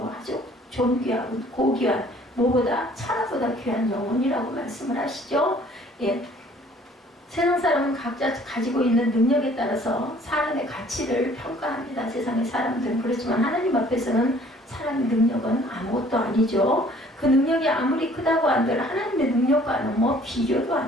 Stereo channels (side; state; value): both; normal; correlation 0.56